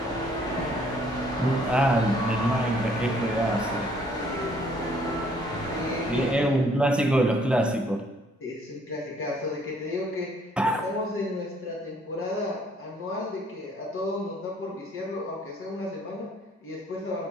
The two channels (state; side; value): normal; both; correlation 0.63